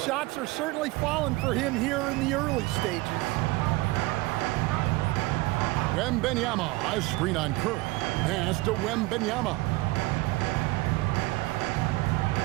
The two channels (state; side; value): quieter; left; 21.2 dB